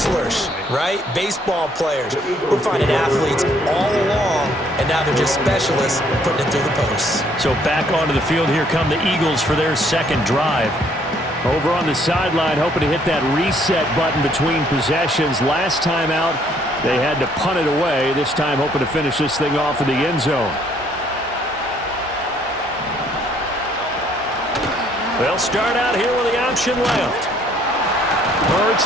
right? Baseball players. We're finding athletes all along, and now they're just specialists putting it through the posts. So back onto the field, here come the Eagles for their second drive. Over on the sideline, hoping to hit that reset button between possessions. Last time out, they had to punt it away. This time, hoping to finish this thing off in the end zone. They'll start out here with the option left. Hurts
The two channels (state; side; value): normal; both; correlation 0.65